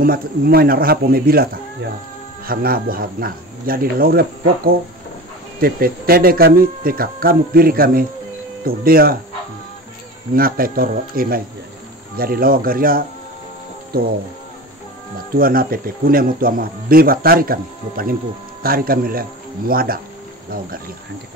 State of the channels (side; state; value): both; normal; correlation 0.32